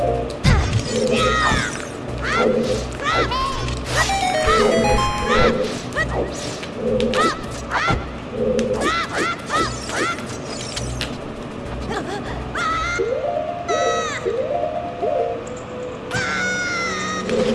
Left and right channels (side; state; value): both; identical; correlation 1.00